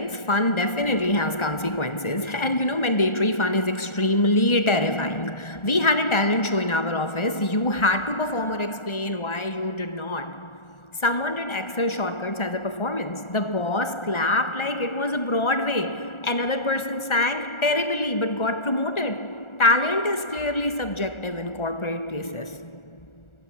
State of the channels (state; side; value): late; right; 1.4 ms